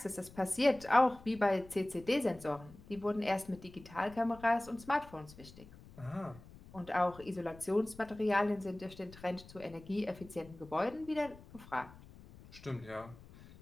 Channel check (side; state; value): left; noise; rumble, 20 dB below the sound